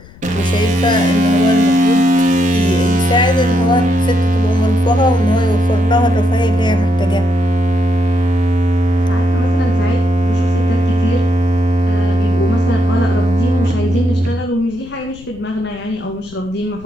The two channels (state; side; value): noise; left; rumble, 22 dB below the sound